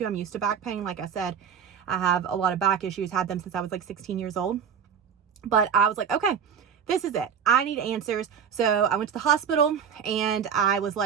I'm used to back pain. Like I said, I have a lot of back issues, had them since I was like 16 years old. But I was like, okay, this is it. I need answers. So I went to the hospital, and I was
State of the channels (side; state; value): left; quieter; 7.5 dB